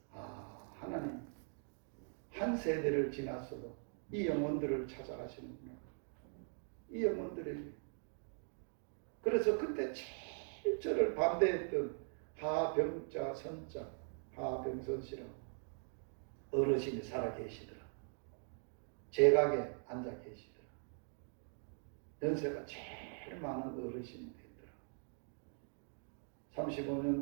하나님 한 세대를 지났어도 이 영혼들을 찾아가시는구나. 이 영혼들에게. 그래서 그때 제일 저를 반대했던 하병자 선자 하병선씨라고 어르신이 살아계시더라. 제각에 앉아 계시더라. 연세가 제일 많은 어르신이 되더라.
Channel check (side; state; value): left; silent; 50 dB below the other